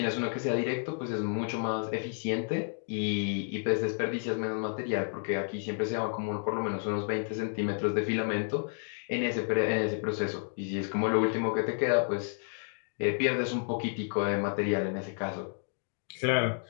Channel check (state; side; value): silent; right; 57 dB below the other